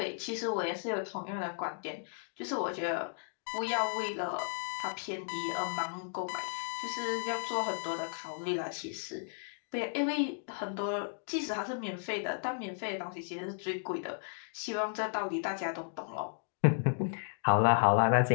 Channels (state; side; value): silent; right; digital silence